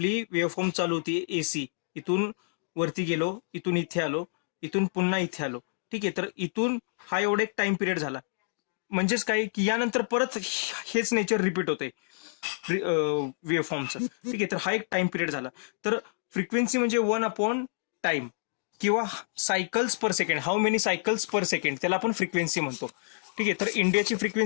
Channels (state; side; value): silent; right; digital silence